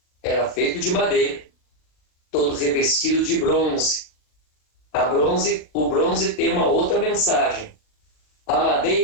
era feito de madeira, todo revestido de bronze. O bronze tem uma outra mensagem. A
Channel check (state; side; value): late; right; 39 ms